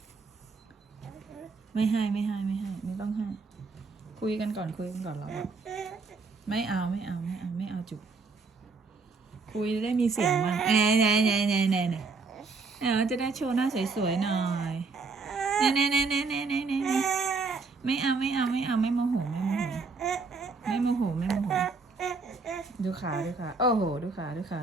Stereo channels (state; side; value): quieter; left; 4.3 dB